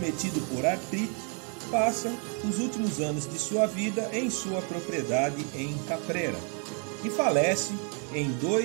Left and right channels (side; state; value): left; quieter; 38.9 dB